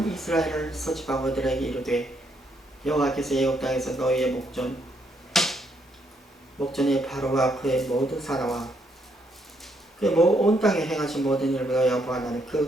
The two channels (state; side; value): normal; both; correlation 0.74